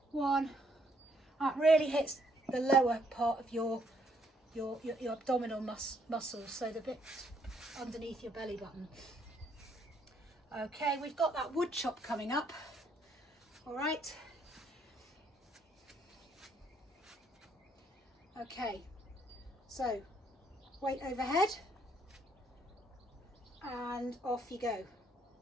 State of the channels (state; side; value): normal; both; correlation 0.69